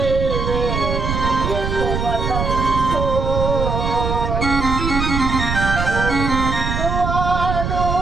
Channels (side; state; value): right; noise; rumble, 2 dB below the sound